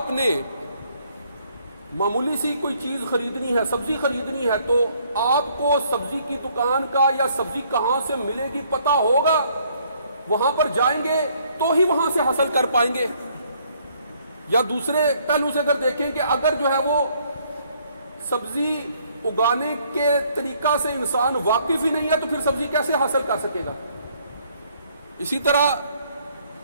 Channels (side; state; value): both; inverted; correlation -0.65